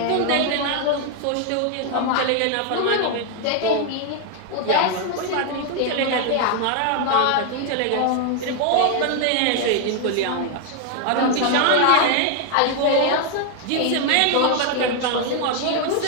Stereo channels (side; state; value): both; different; correlation 0.00